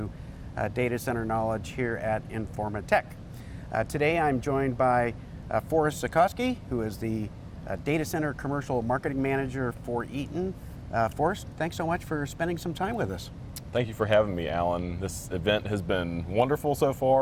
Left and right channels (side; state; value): both; identical; correlation 1.00